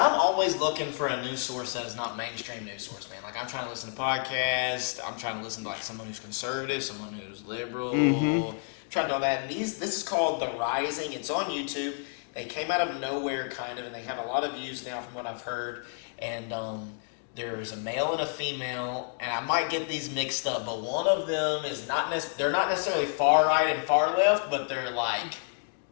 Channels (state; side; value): silent; right; 58 dB below the other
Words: always looking for a news source that is not mainstream news source, man. Like, I'm trying to listen to podcasts. I'm trying to listen to, like, someone who's conservative, someone who's liberal. Mm-hmm. Trying to do all that. And this is called The Rising. It's on YouTube. They came out of nowhere, kind of, and they have a lot of views now from what I've heard. And there's a male and a female, and I might get these mixed up, but one of them is they're not necessarily far right and far left, but they're like